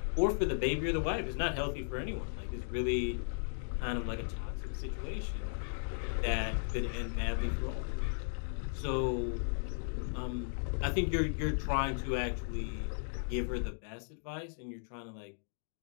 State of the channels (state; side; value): silent; right; digital silence